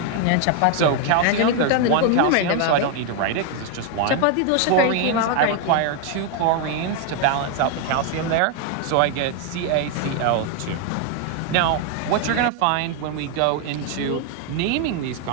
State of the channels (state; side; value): different; both; correlation 0.01